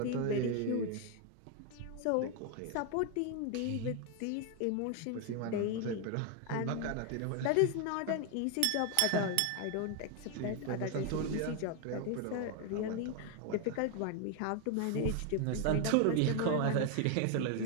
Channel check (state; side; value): different; both; correlation 0.01